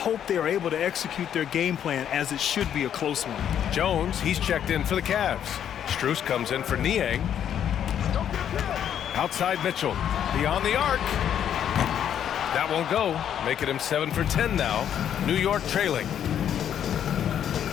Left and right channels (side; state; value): right; quieter; 9.5 dB